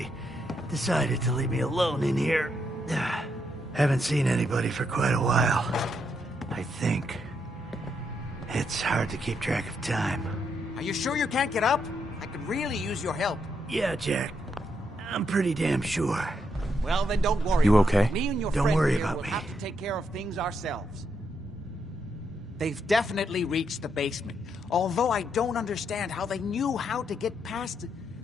decided to leave me alone in here. Haven't seen anybody for quite a while. I think. It's hard to keep track of time. Are you sure you can't get up? I could really use your help. Yeah, Jack. I'm pretty damn sure. Well, then don't worry. You okay? Me and your Don't friend worry here about will me. have to take care of things ourselves. They've definitely reached the basement. Although I don't understand how they knew how to get past it.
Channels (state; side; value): normal; both; correlation 0.79